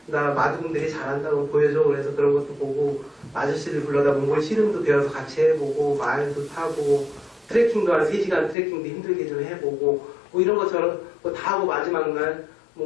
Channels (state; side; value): drops out; right; at 8.6 s